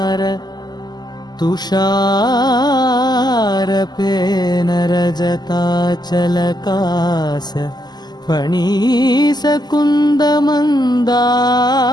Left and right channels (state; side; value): late; right; 0.20 ms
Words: ತುಷಾರ ಪೇನ ರಜತಾಚಲಕಾಸ ಫಣೀಸ ಕುಂದ